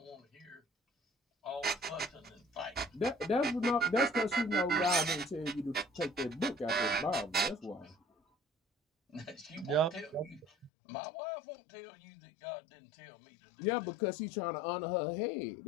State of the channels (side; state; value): right; drops out; at 10.7 s